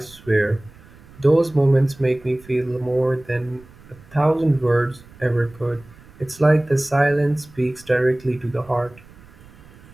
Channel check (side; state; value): right; noise; rumble, 23 dB below the sound